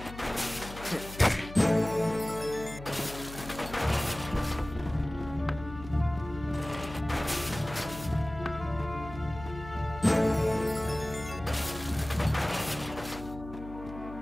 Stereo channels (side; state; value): left; noise; hum, 13 dB below the sound